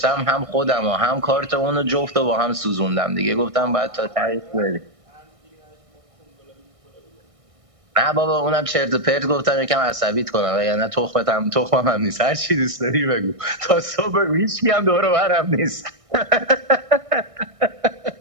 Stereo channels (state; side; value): late; left; 1.6 ms